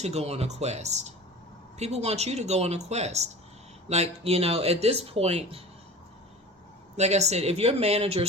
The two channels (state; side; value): normal; both; correlation 0.36